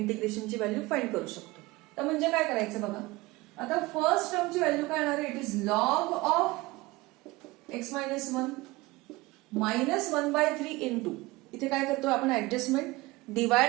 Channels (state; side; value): quieter; left; 21.1 dB